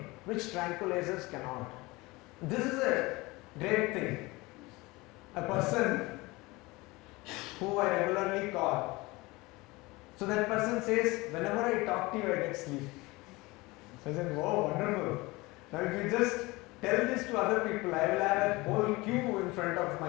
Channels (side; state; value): right; quieter; 22.4 dB